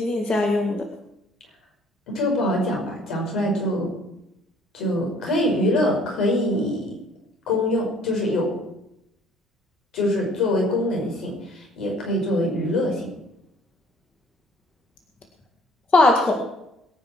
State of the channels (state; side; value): normal; both; correlation 0.57